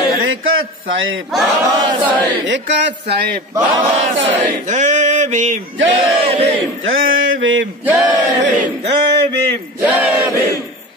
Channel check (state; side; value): normal; both; correlation 0.31